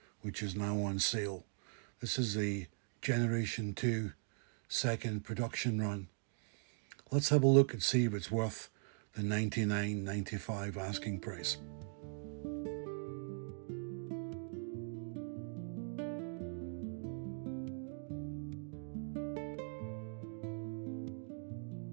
which is now on sale. This is the Generation 2 second production run. Let's have a look and see if it's worth the $99.95 asking price.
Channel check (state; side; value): silent; left; 51 dB below the other